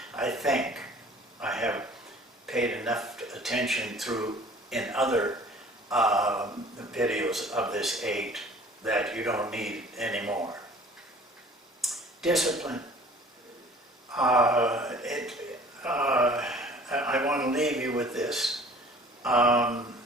I think I have paid enough attention in other videos of this 8 that you don't need anymore. Discipline. I want to leave you with this.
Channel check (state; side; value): normal; both; correlation 0.49